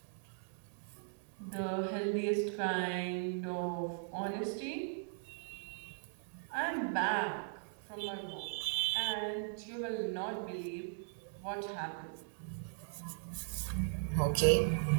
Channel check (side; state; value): left; silent; digital silence